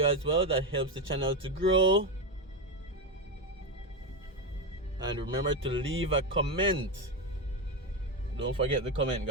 as well. That helps the channel to grow. And remember to leave a comment. Don't forget the comment,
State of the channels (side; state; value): both; normal; correlation 0.11